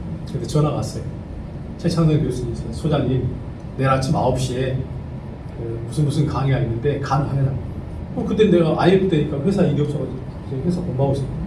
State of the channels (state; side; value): identical; both; correlation 1.00